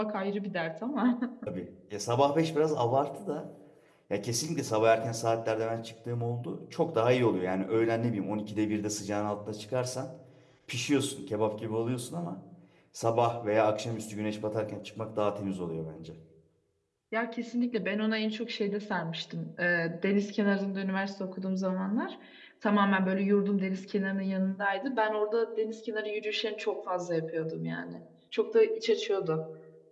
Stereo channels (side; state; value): both; identical; correlation 1.00